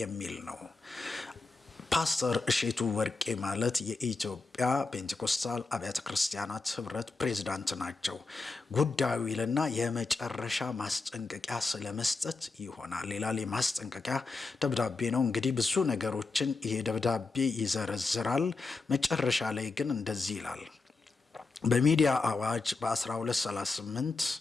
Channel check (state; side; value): quieter; right; 3.8 dB